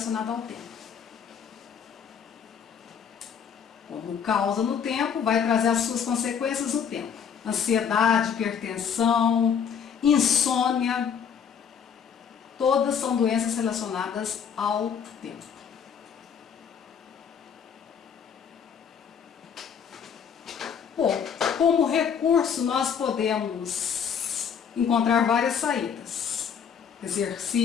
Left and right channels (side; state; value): right; quieter; 7.3 dB